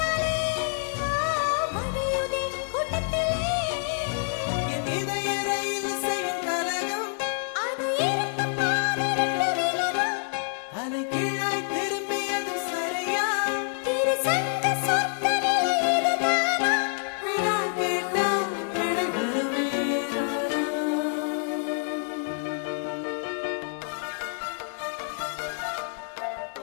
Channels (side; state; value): right; silent; 60 dB below the other